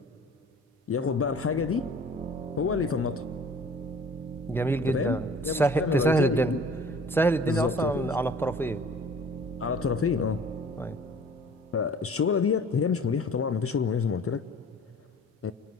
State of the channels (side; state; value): both; normal; correlation 0.48